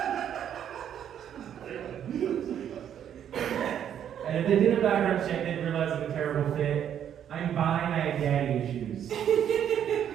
And if they did a background check, they'd realize I'm a terrible fit. I'm bi and I have daddy issues.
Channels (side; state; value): left; quieter; 9.5 dB